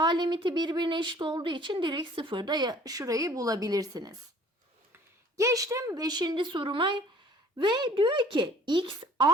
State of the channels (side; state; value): both; normal; correlation 0.52